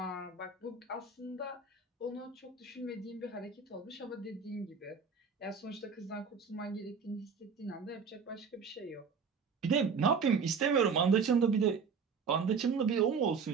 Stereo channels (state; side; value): quieter; left; 5.6 dB